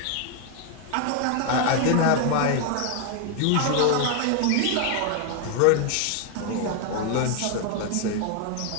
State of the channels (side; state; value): both; different; correlation 0.01